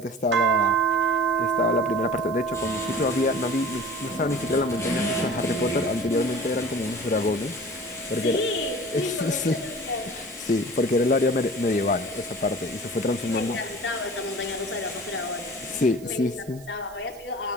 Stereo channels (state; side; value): noise; right; hiss, 23 dB below the sound